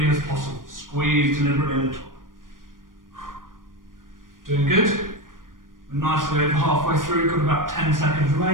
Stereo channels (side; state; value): left; late; 0.90 ms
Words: as possible. Squeeze deliberately at the top. Doing good. We're nicely over halfway through, got about 10 seconds